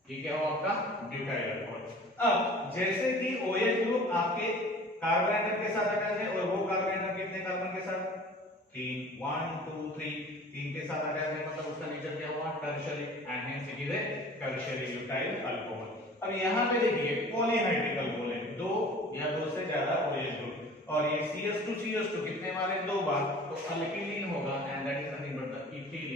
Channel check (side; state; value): both; normal; correlation 0.44